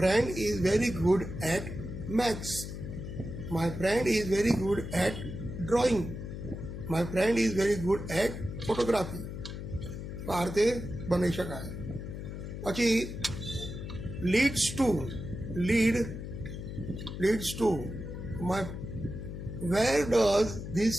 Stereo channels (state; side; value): noise; left; hum, 8 dB below the sound